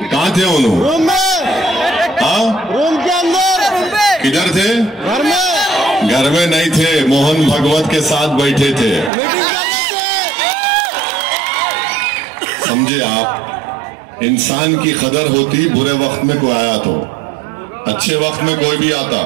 कहाँ थे उन्होंने? रूम में। हाँ, रूम के अंदर। किधर थे? घर में। घर में नहीं थे, मोहन भगवत के साथ बैठे थे। समझे आप? इंसान की कदर होती बुरे वक्त में कोई आया तो, अच्छे वक्त में कोई भी आता।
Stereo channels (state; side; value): drops out; left; at 9.1 s